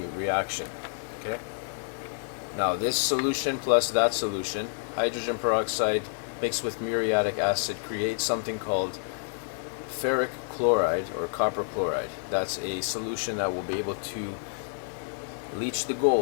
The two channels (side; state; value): right; silent; 59 dB below the other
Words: reaction. Okay. Now this solution plus that solution, hydrogen peroxide mixed with muriatic acid, creates something called ferric chloride or copper chloride. That's a solution that will be able to leach the